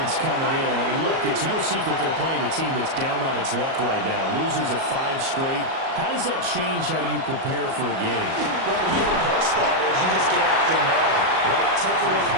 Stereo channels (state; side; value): late; left; 37 ms